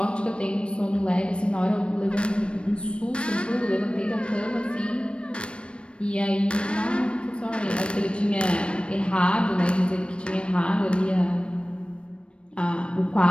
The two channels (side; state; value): right; late; 0.058 ms